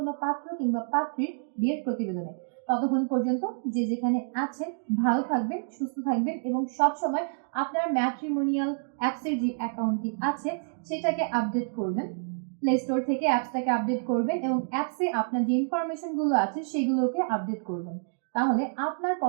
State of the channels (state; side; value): silent; left; digital silence